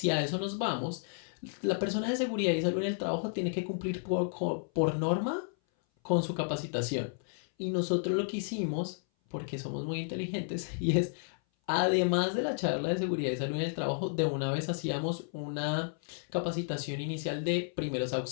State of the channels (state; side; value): silent; right; 56 dB below the other